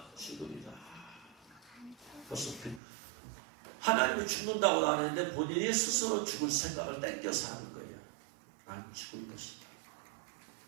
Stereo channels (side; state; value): left; drops out; at 2.8 s